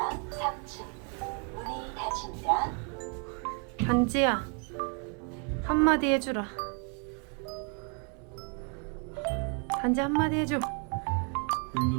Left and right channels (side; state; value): left; quieter; 39.0 dB